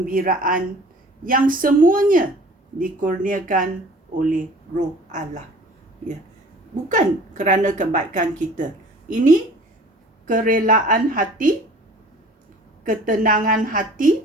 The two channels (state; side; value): normal; both; correlation 0.47